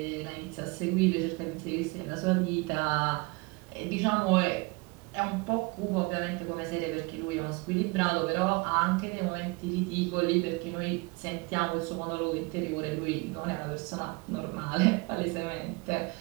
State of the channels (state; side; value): quieter; left; 27.0 dB